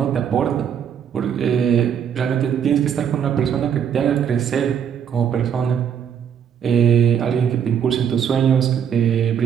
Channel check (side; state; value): left; quieter; 8.2 dB